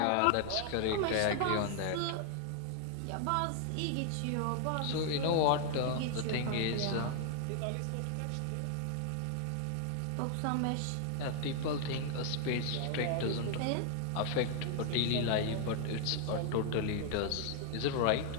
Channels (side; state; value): both; different; correlation 0.00